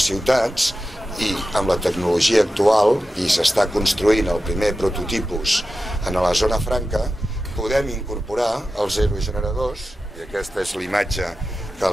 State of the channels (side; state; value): both; normal; correlation 0.93